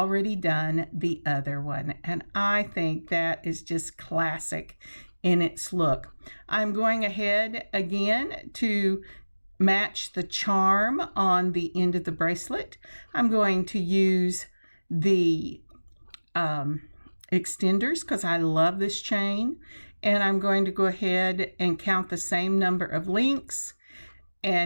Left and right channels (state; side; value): inverted; both; correlation -1.00